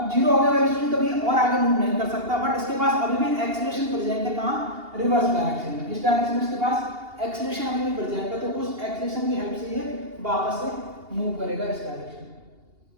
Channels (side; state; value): left; late; 2.8 ms